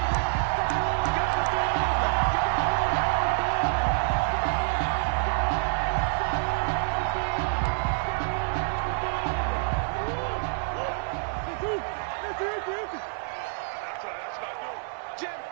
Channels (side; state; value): left; silent; digital silence